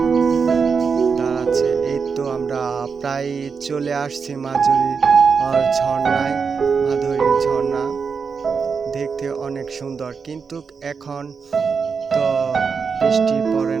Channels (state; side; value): quieter; left; 5.6 dB